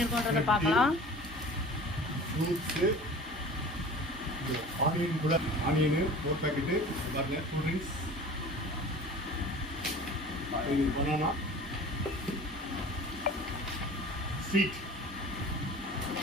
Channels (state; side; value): normal; both; correlation 0.41